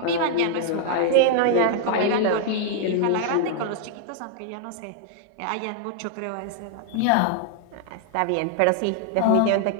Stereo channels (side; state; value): both; different; correlation 0.00